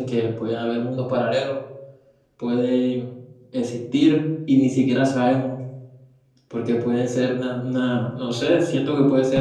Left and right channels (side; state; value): both; identical; correlation 1.00